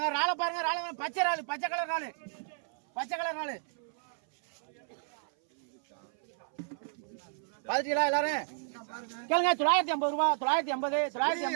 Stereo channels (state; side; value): silent; left; 56 dB below the other